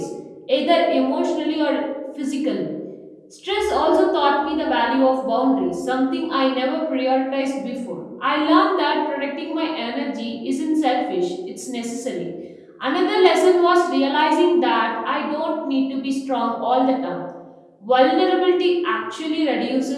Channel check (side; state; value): both; identical; correlation 1.00